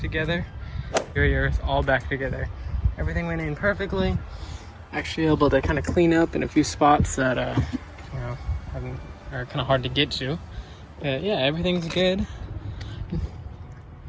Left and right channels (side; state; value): both; identical; correlation 1.00